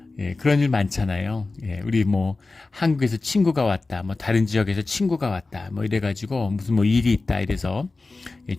그런 일 많잖아요. 우리 한국에서 친구가 왔다, 다른 지역에서 친구가 왔다, 이래가지고 무슨 일이 있다 이래서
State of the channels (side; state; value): right; quieter; 3.5 dB